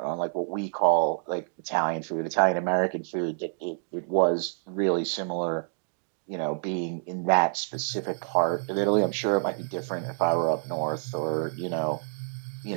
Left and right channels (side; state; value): left; silent; digital silence